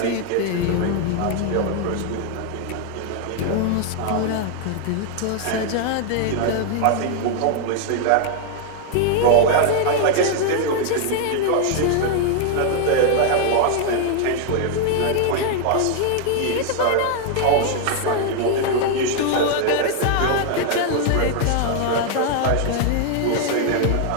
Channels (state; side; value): different; both; correlation 0.00